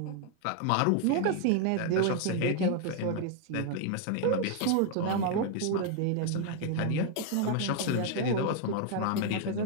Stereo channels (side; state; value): both; different; correlation 0.00